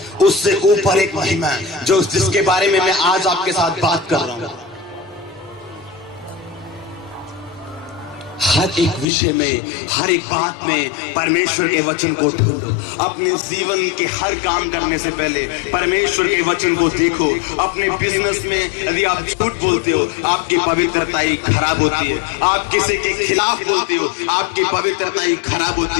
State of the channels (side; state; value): right; drops out; at 9.1 s